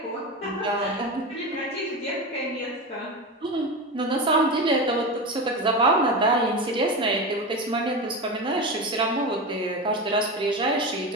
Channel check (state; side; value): normal; both; correlation 0.21